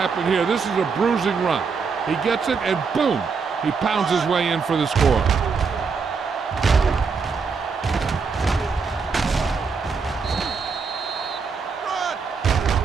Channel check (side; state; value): left; quieter; 5.3 dB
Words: here. This is a bruising run. He gets it, and boom, he pounds his way in for the score.